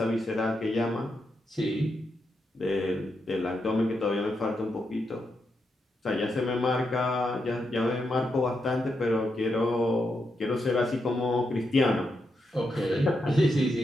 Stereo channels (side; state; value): both; normal; correlation 0.83